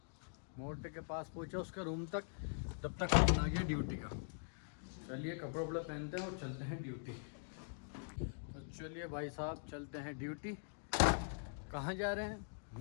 मोटे के पास पहुंचा उसके रूम तक, तब तक फोन आ गया ड्यूटी का। चलिए कपड़े वपड़े पहनते हैं और चलते हैं ड्यूटी। तो चलिए भाई साहब चलते हैं ड्यूटी। कहाँ जा रहे हैं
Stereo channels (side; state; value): right; silent; digital silence